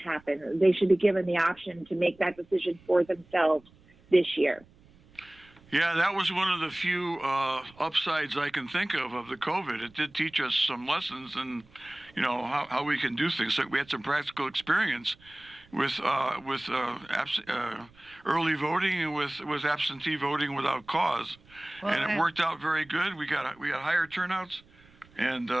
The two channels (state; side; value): noise; right; rumble, 28 dB below the sound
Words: They should be given the option to make that decision for themselves this year. Yeah, that was one of the few upsides I can think of the COVID. It did teach us some lessons and, how we can do things. So we had some practical experience with early voting and with absentee voting without cause. Well, and it worked out very good. We got higher turnouts, and